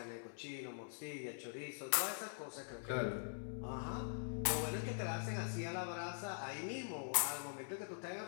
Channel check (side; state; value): right; silent; digital silence